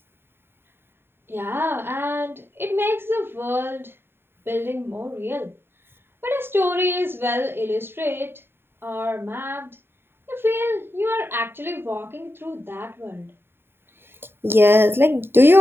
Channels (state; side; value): late; left; 0.11 ms